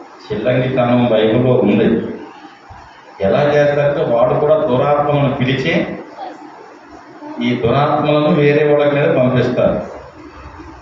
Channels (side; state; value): both; identical; correlation 1.00